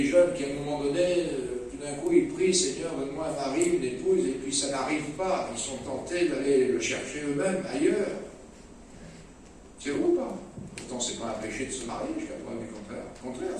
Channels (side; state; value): both; identical; correlation 1.00